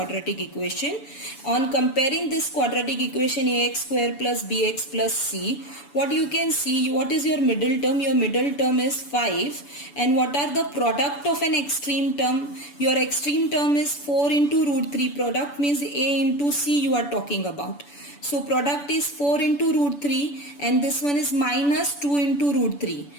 equation. On comparing this quadratic equation ax square plus bx plus c, what you can see, what is your middle term? Your middle term is 5. And what are the product of an extreme term? Your extreme term is 4 into root 3. Product means a into c you are talking about. So product is 4 into root 3 and this one is minus 2 into root 3.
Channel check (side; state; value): right; late; 7.0 ms